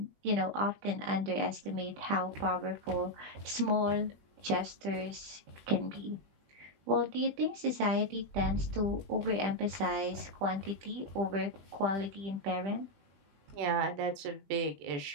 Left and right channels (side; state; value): left; late; 20 ms